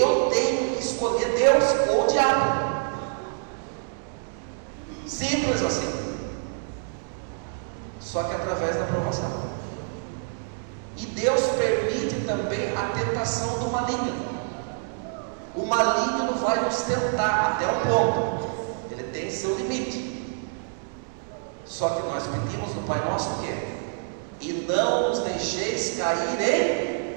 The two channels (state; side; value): silent; left; digital silence